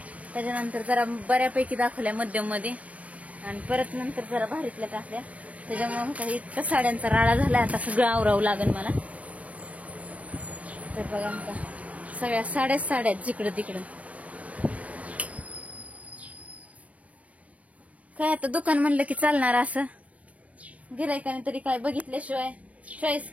त्याच्यानंतर जरा बऱ्यापैकी दाखवल्या मध्यम मध्ये, आणि परत नंतर जरा भारीतल्या टाकल्या. त्याच्यामुळे इतका साड्यांचा राडा झाला. आता सगळं आवरावं लागेल मला. तर बघा आता सगळ्या साड्या जिकडं तिकडं. काय आता दुकान म्हणलं की चालणार असं, गिरायकाने तरी काय बघितल्याशिवाय चॉईस,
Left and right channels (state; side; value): late; left; 0.068 ms